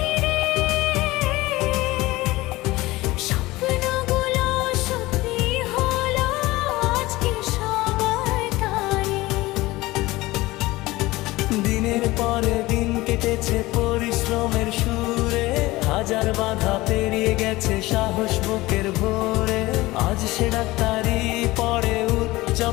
স্বপ্নগুলো সত্যি হলো আজকে সবার টানে। দিনের পরে দিন কেটেছে পরিশ্রমের সুরে, হাজার বাধা পেরিয়ে গেছে সাহস বুকের ভোরে। আজ সে ডাক্তারি পড়ে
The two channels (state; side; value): quieter; right; 19.5 dB